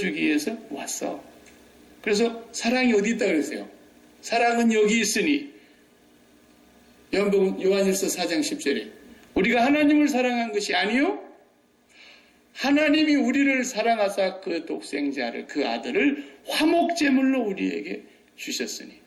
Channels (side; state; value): both; identical; correlation 1.00